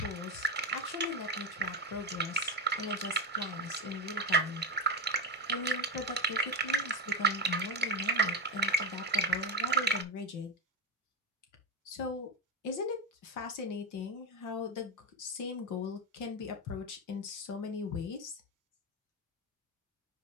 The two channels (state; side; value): normal; both; correlation 0.12